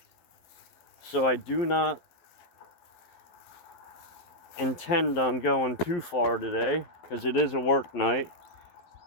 So I do not intend on going too far today because it is a work night.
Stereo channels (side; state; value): right; late; 11 ms